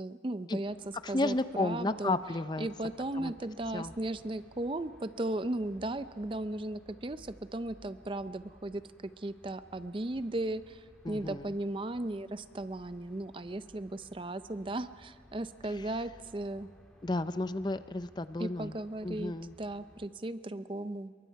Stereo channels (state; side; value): normal; both; correlation 0.67